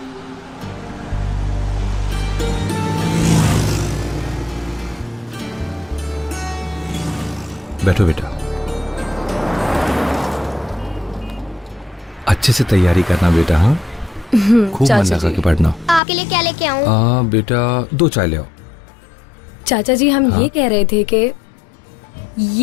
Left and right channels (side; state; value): right; drops out; at 16.0 s